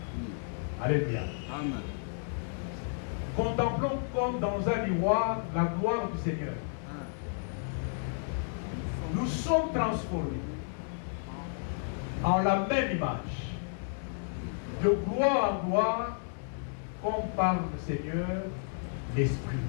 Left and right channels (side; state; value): right; silent; digital silence